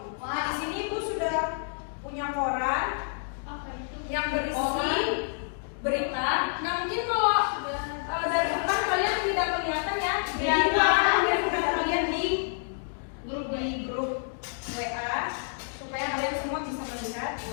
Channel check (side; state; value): right; silent; digital silence